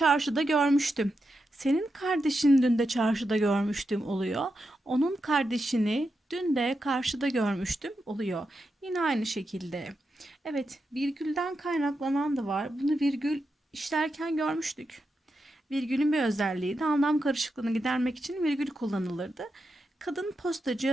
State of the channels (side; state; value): both; normal; correlation 0.87